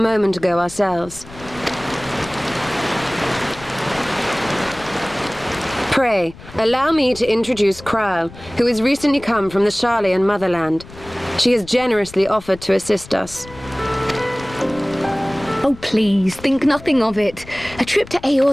ago ourselves. Pray, allow me to introduce Kryle, who has recently come from the Sharlayan motherland. She has generously offered to assist us. Oh, please, think nothing of it. A trip to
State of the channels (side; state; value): left; noise; rumble, 18 dB below the sound